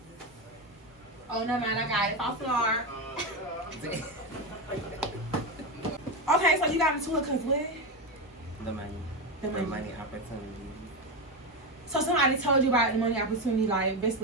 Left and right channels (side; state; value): both; normal; correlation 0.14